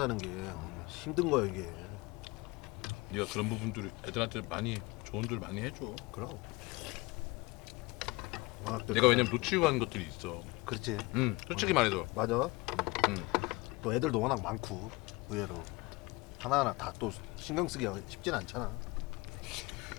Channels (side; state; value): right; quieter; 24.0 dB